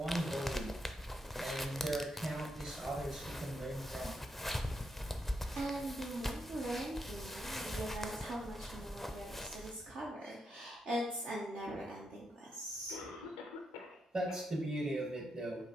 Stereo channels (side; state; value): both; normal; correlation 0.82